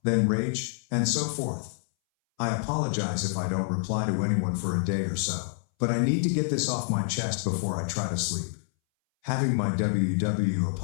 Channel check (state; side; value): silent; right; 60 dB below the other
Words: then rage, and so forth. I apologize if I don't reply to anyone for a day or so, but I need to get this off my chest before I try to sleep. Having my WW